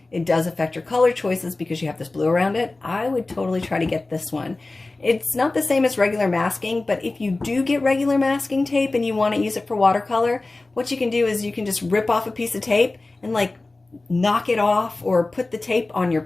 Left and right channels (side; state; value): right; quieter; 3.2 dB